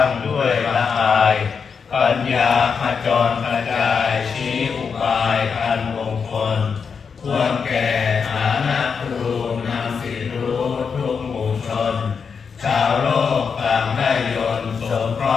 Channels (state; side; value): quieter; right; 6.0 dB